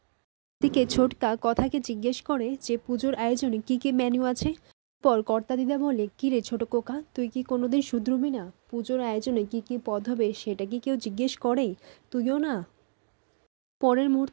এদিকে ছোটকা কথাকে জিজ্ঞেস করে যে পুজোর আয়োজনে কি কি মেনু আছে। পর কর্তা দিদা বলে, কি রে ছোট কোকা, তুই কি কোনোদিন শুধরবি না? পুজোর আয়োজনে কি কি পদ হবে সেটা কি কেউ জিজ্ঞেস করে? তুইও না। পরের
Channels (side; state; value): left; silent; digital silence